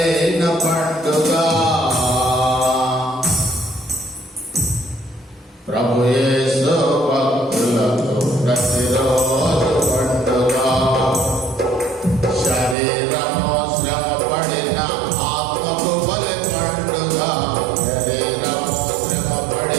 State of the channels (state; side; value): drops out; left; at 12.8 s